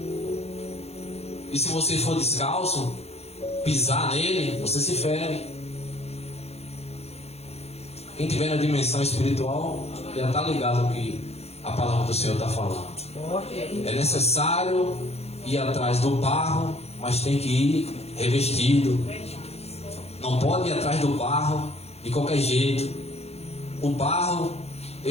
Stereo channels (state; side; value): late; right; 0.30 ms